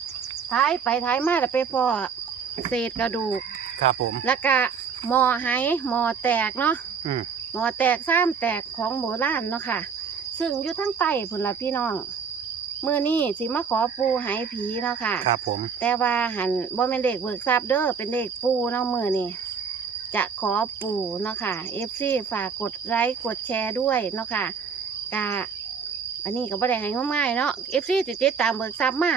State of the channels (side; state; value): left; quieter; 6.0 dB